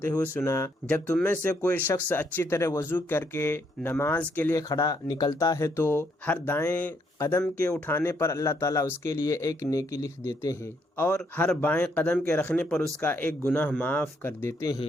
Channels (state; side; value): normal; both; correlation 0.73